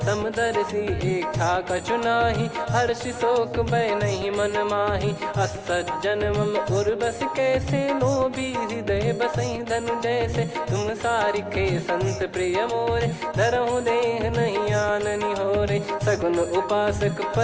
समदर्शी इच्छा कछु नाही हर्षि शोक भय नहीं मन माही असज्जन मम उर बस कैसे लोभी हृदय बसई धनु जैसे तुम सारिखे संत प्रिय मोरे धरहु देह नहीं आननी होरे सगुन उपासक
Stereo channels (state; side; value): identical; both; correlation 1.00